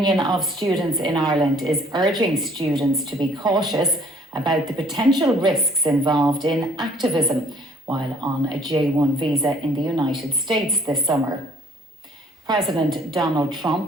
of Students in Ireland is urging students to be cautious about the potential risks involved in activism while on a J1 visa in the United States this summer. President Donald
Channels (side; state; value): both; normal; correlation 0.57